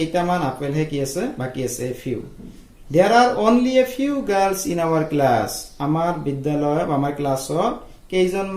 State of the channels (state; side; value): identical; both; correlation 1.00